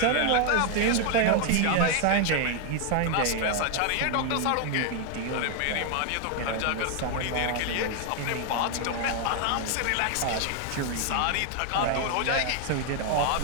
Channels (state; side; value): different; both; correlation 0.00